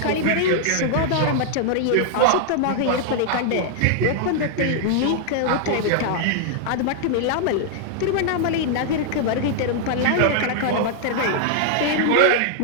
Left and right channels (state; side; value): different; both; correlation -0.01